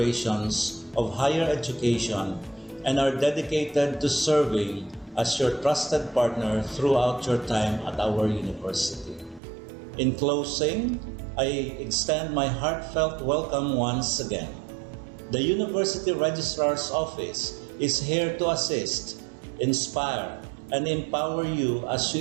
of higher education and are dedicated to serving as your trusted partner throughout your time at our university. In closing, I extend my heartfelt welcome once again. The University Registrar's Office is here to assist, inspire, and empower you as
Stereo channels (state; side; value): drops out; left; at 9.4 s